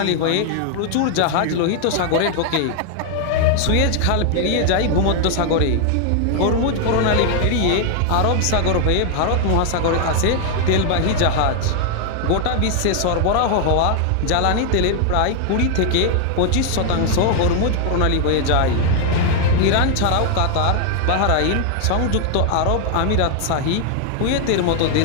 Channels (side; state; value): both; different; correlation 0.00